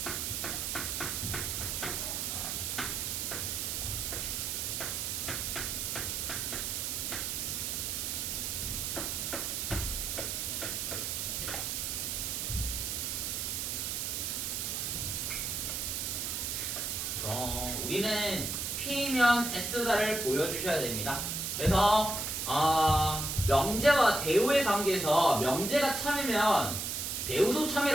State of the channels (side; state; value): right; noise; hiss, 2 dB below the sound